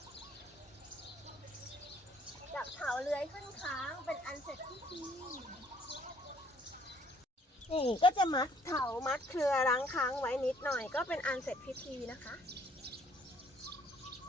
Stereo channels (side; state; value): both; normal; correlation 0.63